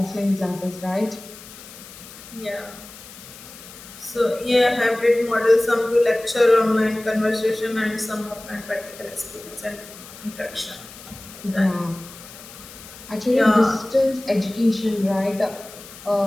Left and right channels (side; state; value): left; noise; hiss, 17 dB below the sound